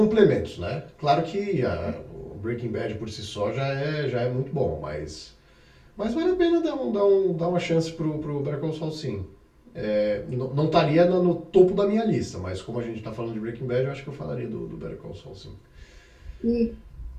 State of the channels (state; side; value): identical; both; correlation 1.00